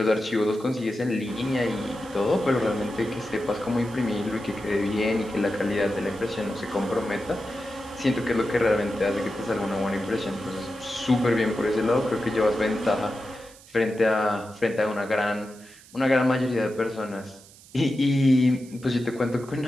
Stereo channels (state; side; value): noise; right; hiss, 23 dB below the sound